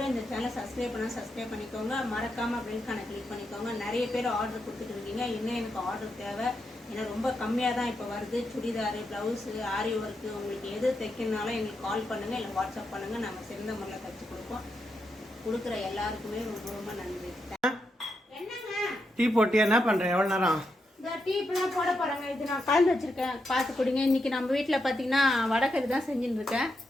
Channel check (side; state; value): both; normal; correlation 0.84